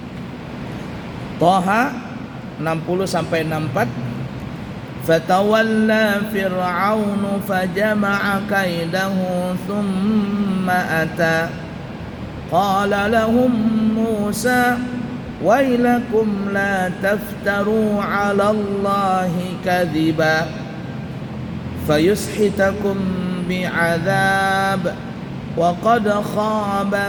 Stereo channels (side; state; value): both; identical; correlation 1.00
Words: Thaha 60 sampai 64. Fatawalla fir'aunu fajama'a kaidahu thumma ata qala lahum Musa wailakum la taftaru 'ala Allahi kadhiba fayushitakum bi'adzab wa qad khaba